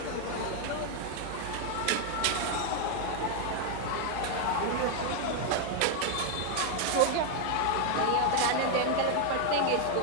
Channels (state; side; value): different; both; correlation 0.01